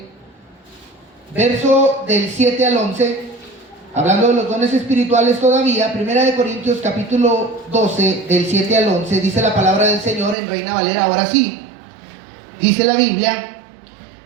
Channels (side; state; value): left; drops out; at 10.4 s